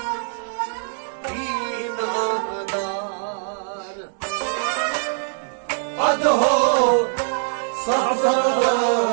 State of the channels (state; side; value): silent; left; digital silence